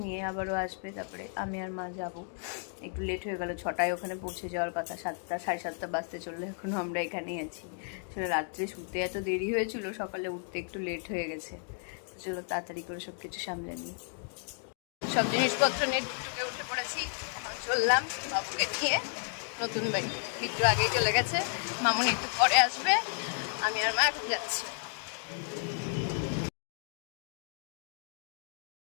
নিয়ে, আবারও আসবে, তারপরে আমি আর মা যাব। একটু লেট হয়ে গেল, 6টায় ওখানে পৌঁছে যাওয়ার কথা, 7টা 7:30 বাজতে চললো, এখনও আমরা এখানেই আছি। আসলে রাত্রে শুতে এত দেরি হয়েছিল, সকালে উঠতে একটু লেট হয়ে গেছে। চলো তাড়াতাড়ি করে সব কিছু সামলে নিই। সব জিনিসপত্র নিয়ে টুকটুকে উঠে পড়েছি। এখন চললাম বাবুকে নিয়ে নতুন বাড়ি। বিট্টু আগেই চলে গেছে, মামুনি একটু পরে আসবে, আমি আর মা এখন যাচ্ছি।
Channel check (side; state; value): right; silent; 56 dB below the other